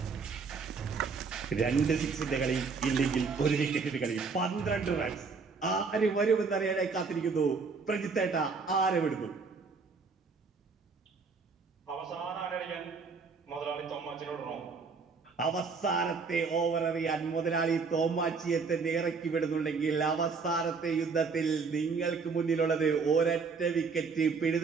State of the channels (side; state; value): left; quieter; 4.9 dB